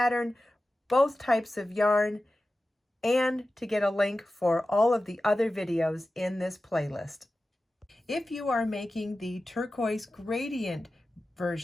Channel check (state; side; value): normal; both; correlation 0.94